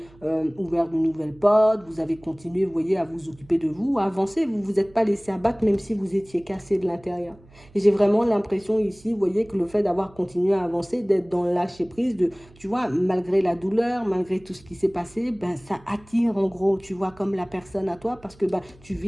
ouvert de nouvelles portes, vous avez continué, vous voyez, à vous occuper de vous, à avancer, vous ne vous êtes pas laissé abattre même si vous étiez cassé de l'intérieur. Et j'ai vraiment l'impression ici, vous voyez, que le fait d'avoir continué à avancer, d'être dans le lâcher prise, de, tu vois, malgré la douleur, malgré tout ce qui s'est passé, ben ça attire en gros, tu vois, comme la personne à toi parce que ben, tu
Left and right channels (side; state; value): right; noise; hum, 26 dB below the sound